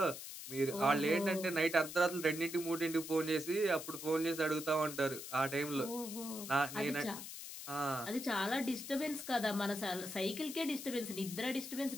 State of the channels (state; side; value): noise; left; hiss, 9 dB below the sound